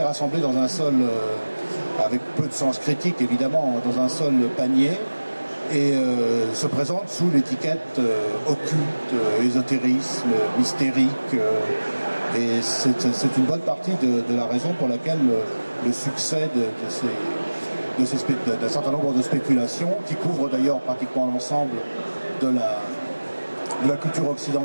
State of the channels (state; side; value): inverted; both; correlation -1.00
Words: rassemblé dans un seul, avec peu de sens critique évidemment, dans un seul panier, et se présente sous l'étiquette occulte, ésotérisme, mystérique. Et c'est une bonne partie de la raison pour laquelle le succès d'un certain nombre de spéculations, qui couvrent d'ailleurs pratiquement l'ensemble de la culture